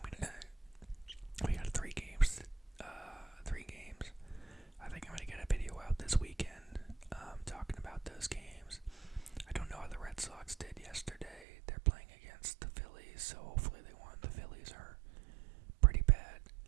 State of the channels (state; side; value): drops out; left; at 11.5 s